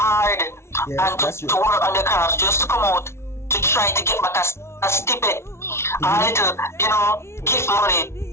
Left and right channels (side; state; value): right; late; 0.13 ms